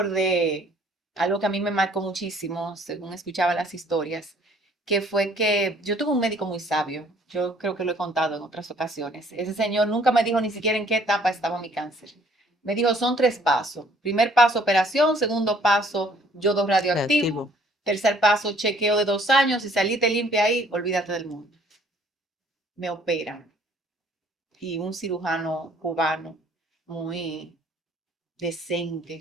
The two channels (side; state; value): both; normal; correlation 0.59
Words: algo que a mí me marcó muchísimo, según escuchaba las historias, que fue que yo tuve un médico muy sabio. Yo creo que lo he contado en otras ocasiones. Ese señor nunca me dijo ni siquiera en qué etapa estaba mi cáncer. Me dijo, son 3 pasos. Primer paso, operación. Segundo paso, yodo radioactivo. Tercer paso, chequeo de 2 años. Si saliste limpia ahí, olvídate del mundo. Me operan. Y un cirujano cubano muy